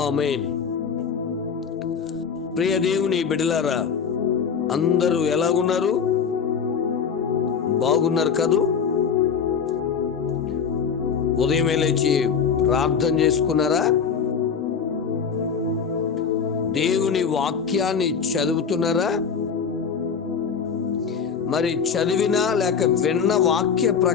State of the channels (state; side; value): quieter; right; 6.5 dB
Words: ఆమేన్. ప్రియ దేవుని బిడ్డలారా, అందరూ ఎలాగున్నారు? బాగున్నారు కదూ? ఉదయమే లేచి ప్రార్థన చేసుకున్నారా? దేవుని వాక్యాన్ని చదువుతున్నారా? మరి చదివినా లేక విన్న వాక్య